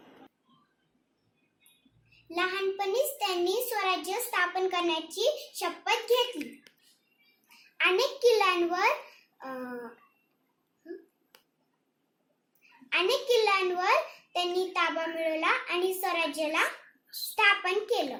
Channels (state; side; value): identical; both; correlation 1.00